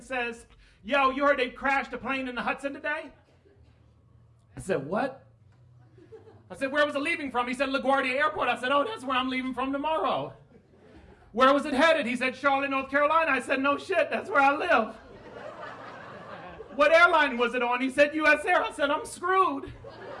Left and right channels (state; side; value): identical; both; correlation 1.00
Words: says, yo, you heard they crashed a plane in the Hudson today? I said, what? I said, where was it leaving from? He said, LaGuardia Airport. I said, oh, that's where I'm leaving from tomorrow. Where was it headed? He said, Charlotte, North Carolina. I said, no shit, that's where I live. What airline was it on? He said, US Air. I said, I'm screwed.